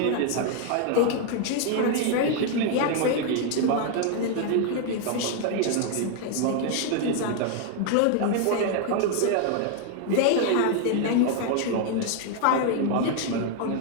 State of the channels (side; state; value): both; different; correlation 0.00